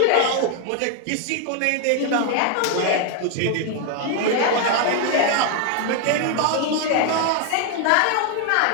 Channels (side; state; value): both; different; correlation 0.00